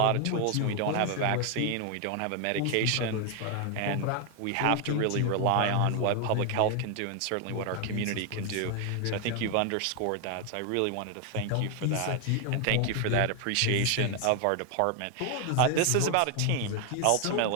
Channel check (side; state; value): both; different; correlation 0.01